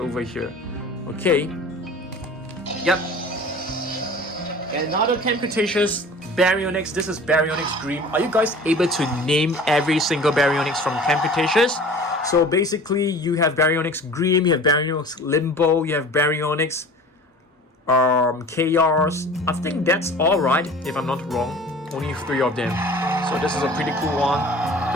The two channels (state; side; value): normal; both; correlation 0.42